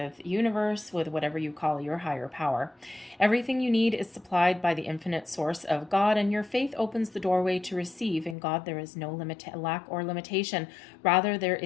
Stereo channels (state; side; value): drops out; right; at 8.3 s